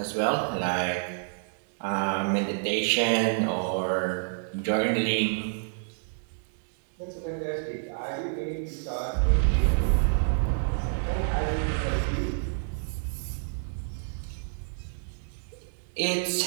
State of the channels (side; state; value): left; silent; digital silence